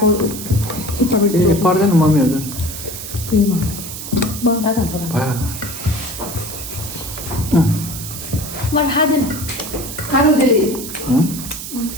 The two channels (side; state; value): right; noise; hiss, 9 dB below the sound